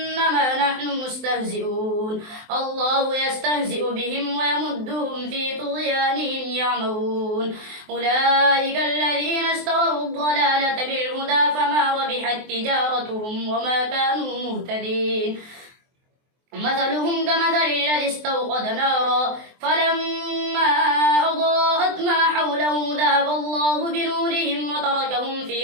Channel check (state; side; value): late; left; 23 ms